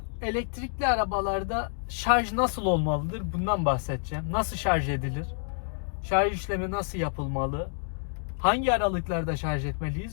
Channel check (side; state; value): right; silent; digital silence